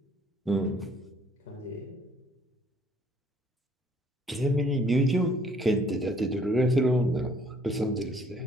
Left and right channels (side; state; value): both; normal; correlation 0.61